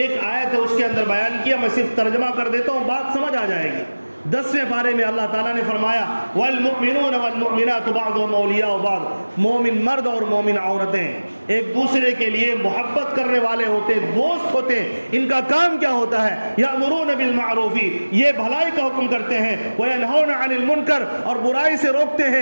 آیت ہے اس کے اندر بیان کیا، میں صرف ترجمہ کر دیتا ہوں، بات سمجھ آ جائے گی. 10ویں پارے میں اللہ تعالیٰ نے فرمایا وَالْمُؤْمِنُونَ وَالْمُؤْمِنَاتُ بَعْضُهُمْ أَوْلِيَاءُ بَعْضٍ، مومن مرد اور مومن عورتیں ایک دوسرے کے لیے محبت کرنے والے ہوتے ہیں، دوست ہوتے ہیں۔ ان کا کام کیا ہوتا ہے؟ یأمرون بالمعروف، یہ بھلائی کا حکم کرتے ہیں، وینہون عن المنکر، اور برائی سے روکتے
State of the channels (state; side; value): inverted; both; correlation -1.00